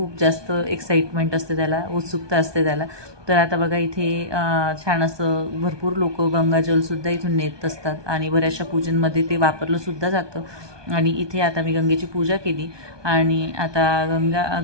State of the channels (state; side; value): late; left; 1.2 ms